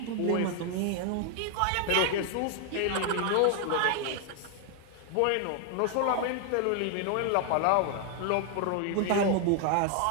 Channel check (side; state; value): both; different; correlation 0.00